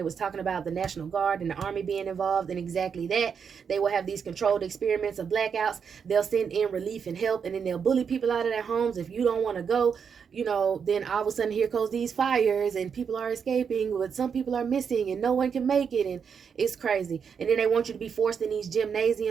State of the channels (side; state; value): left; quieter; 6.7 dB